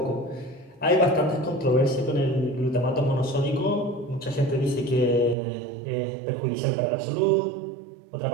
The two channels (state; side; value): drops out; left; at 5.4 s